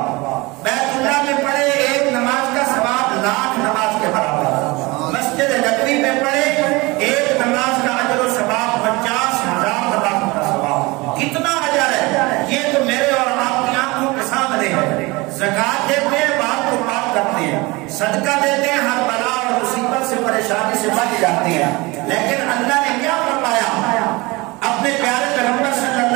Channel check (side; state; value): left; quieter; 23.7 dB